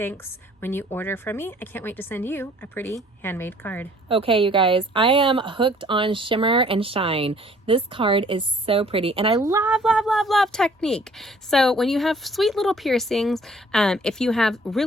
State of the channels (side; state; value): both; normal; correlation 0.57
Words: when you order from me. I can't wait to send you a pretty handmade card. Okay, you guys, I am hooked on Shimmer and Shine. This card is so pretty and I love, love, love, love technique. So when you have sweet little piercings, if you have